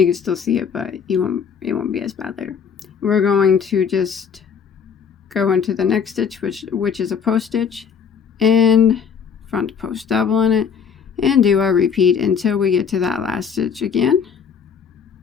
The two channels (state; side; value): quieter; right; 6.9 dB